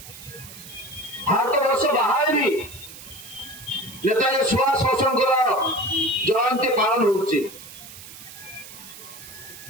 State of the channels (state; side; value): noise; right; hiss, 16 dB below the sound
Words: ভারতবর্ষ বাহারে भी নেতাজী সুভাষ ବୋଷଙ୍କର জয়ন্তী পালন হচ্ছে।